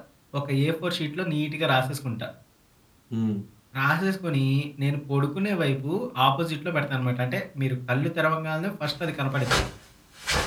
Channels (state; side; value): identical; both; correlation 1.00